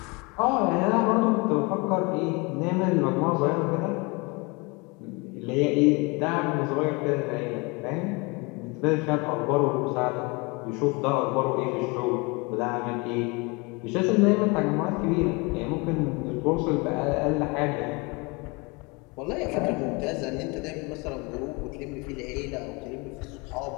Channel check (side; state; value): right; quieter; 27.8 dB